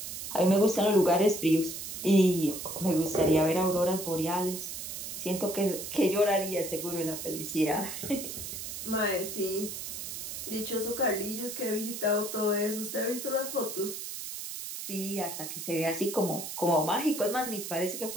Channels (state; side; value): noise; right; hiss, 7 dB below the sound